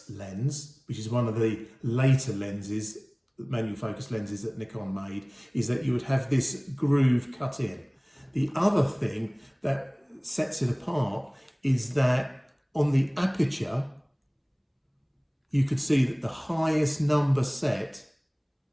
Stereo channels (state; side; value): identical; both; correlation 1.00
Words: lens, which is one of the later lenses, manual focus lenses that Nikon made, is that you would have this groove cut in. The other thing that sets it apart is that on the aperture, you could see that the highest number set,